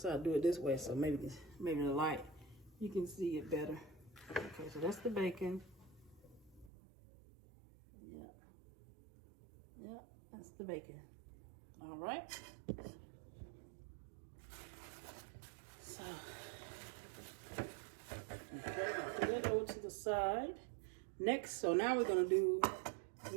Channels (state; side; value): drops out; left; at 6.7 s